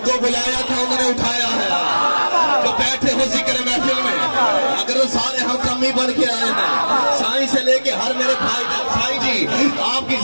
کو بلایا تھا انہوں نے اٹھایا ہے، جو بیٹھے ہو ذکر محفل میں اگر وہ سارے ہم کمی بن کے آئے ہیں، سائیں سے لے کے ہر میرے بھائی سائی جی آپ کی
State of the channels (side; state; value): both; inverted; correlation -1.00